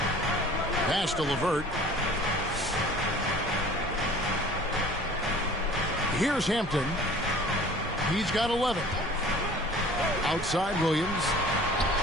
Pass to LeVert. Here's Hampton. He's got 11. Outside Williams.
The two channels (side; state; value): both; normal; correlation 0.47